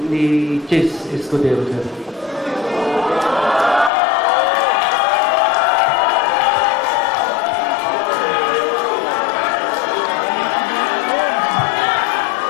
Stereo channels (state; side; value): drops out; right; at 3.9 s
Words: ni Chess Escudero, sir.